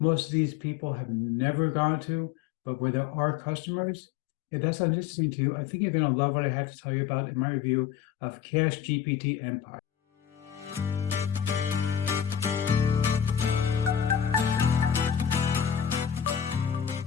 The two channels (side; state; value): right; quieter; 9.1 dB